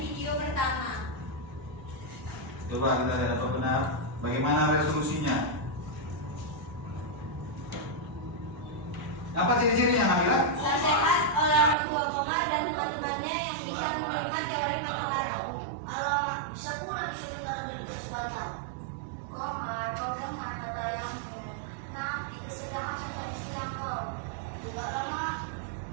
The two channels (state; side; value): drops out; left; at 11.8 s